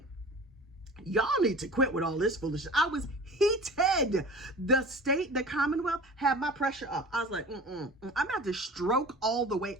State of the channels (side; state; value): both; normal; correlation 0.39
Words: Y'all need to quit with all this foolishness. I was heated. The Commonwealth had my pressure up. I was like, I'm about to stroke all the way